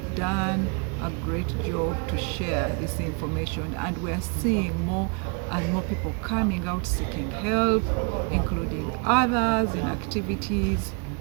done a great job to share this information, and we're seeing more and more people coming out seeking help, including others in activities,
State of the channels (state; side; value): quieter; left; 34.7 dB